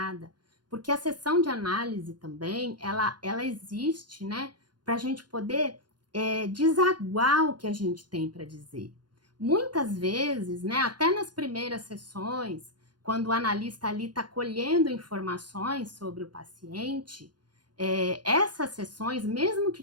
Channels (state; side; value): late; left; 0.71 ms